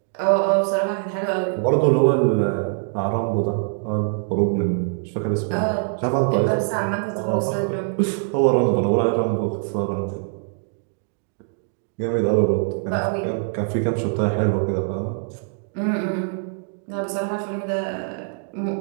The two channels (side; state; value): left; silent; digital silence